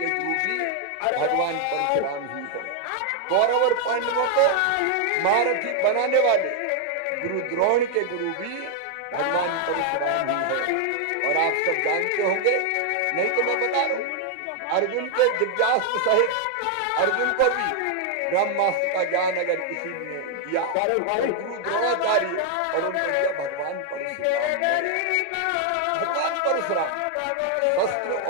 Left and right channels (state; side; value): different; both; correlation 0.00